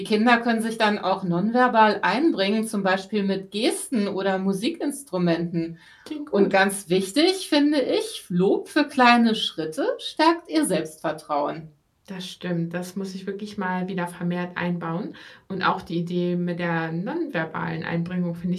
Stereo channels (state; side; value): identical; both; correlation 1.00